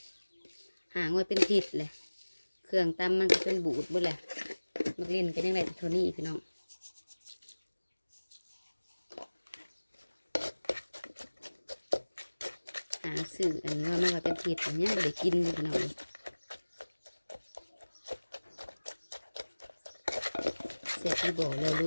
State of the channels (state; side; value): inverted; both; correlation -1.00